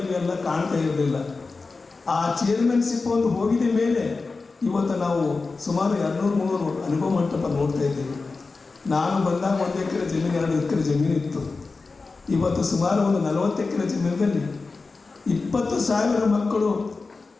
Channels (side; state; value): right; quieter; 4.0 dB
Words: ಕಾಣ್ತಾ ಇರಲಿಲ್ಲ. ಆ ಚೇರ್ಮನ್ಶಿಪ್ ಒಂದು ಹೋಗಿದ ಮೇಲೆ ಇವತ್ತು ನಾವು ಸುಮಾರು 200-300 ಅನುಭವ ಮಂಟಪ ನೋಡ್ತಾ ಇದ್ದೀವಿ. ನಾನು ಬಂದಾಗ 1 ಎಕರೆ ಜಮೀನು 2 ಎಕರೆ ಜಮೀನು ಇತ್ತು. ಇವತ್ತು ಸುಮಾರು ಒಂದು 40 ಎಕರೆ ಜಮೀನಿನಲ್ಲಿ 20,000 ಮಕ್ಕಳು,